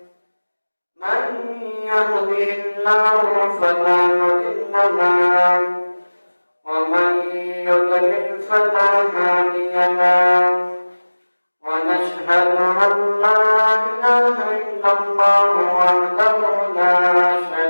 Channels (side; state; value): both; inverted; correlation -1.00